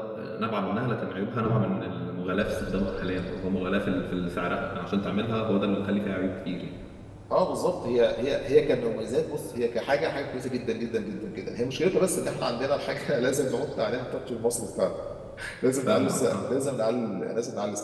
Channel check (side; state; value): both; identical; correlation 1.00